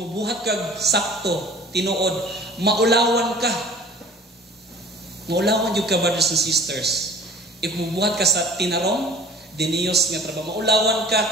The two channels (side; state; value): both; normal; correlation 0.46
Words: kag sakto, tinuod, maulawan ka. Maulawan yung ka, brothers and sisters. If mubuhat ka sa tinarong, diniyos nga trabaho, maulawan ka